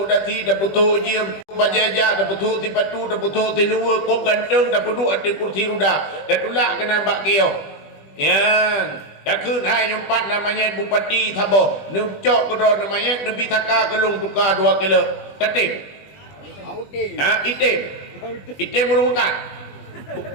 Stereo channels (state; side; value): late; right; 20 ms